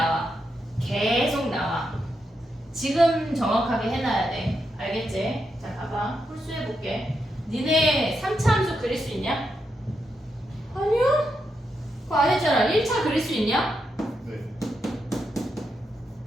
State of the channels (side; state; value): both; normal; correlation 0.84